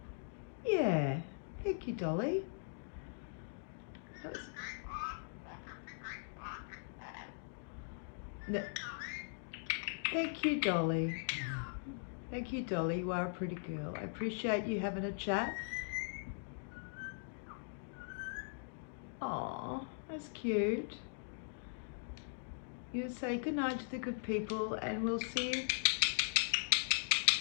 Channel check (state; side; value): silent; right; digital silence